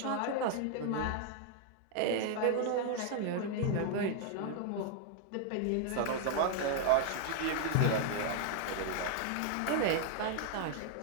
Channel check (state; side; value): different; both; correlation 0.00